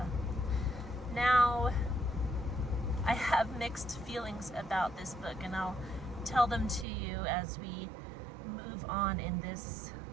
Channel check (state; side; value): drops out; left; at 6.9 s